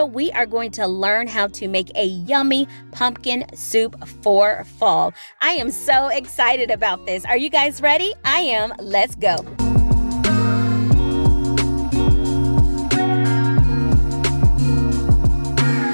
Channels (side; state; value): both; inverted; correlation -1.00